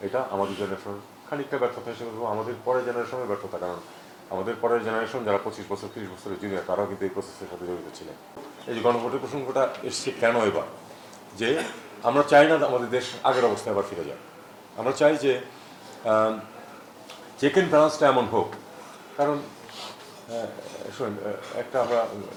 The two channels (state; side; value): identical; both; correlation 1.00